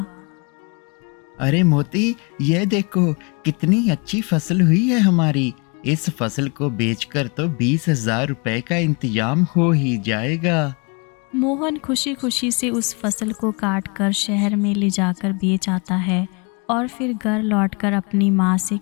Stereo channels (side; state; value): right; quieter; 31.8 dB